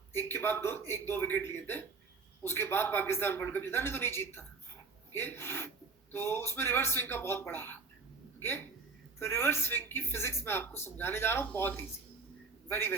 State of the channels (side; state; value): left; quieter; 4.5 dB